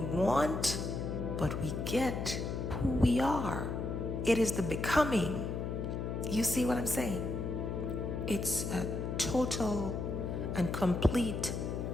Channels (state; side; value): noise; left; hum, 3 dB below the sound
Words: but we get who we are. It is the becoming. You see what I'm saying? It's a total and complete